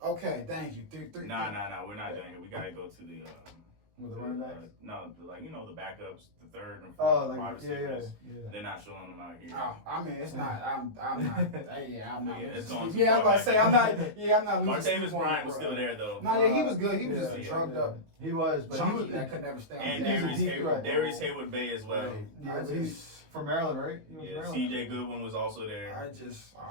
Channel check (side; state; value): left; late; 19 ms